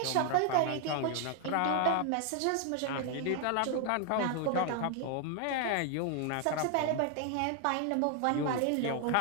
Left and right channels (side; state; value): both; different; correlation 0.01